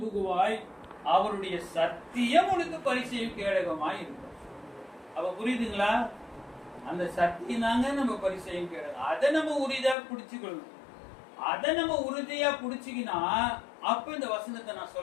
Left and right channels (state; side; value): drops out; right; at 10.0 s